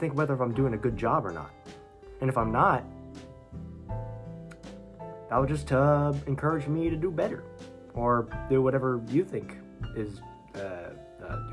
whether I'm doing a good job or not. And if I'm not, that will just encourage me to do better, or do whatever you think is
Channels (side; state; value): both; identical; correlation 1.00